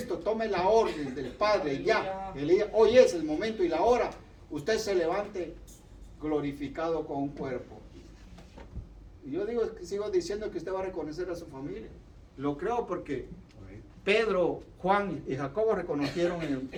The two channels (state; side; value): identical; both; correlation 1.00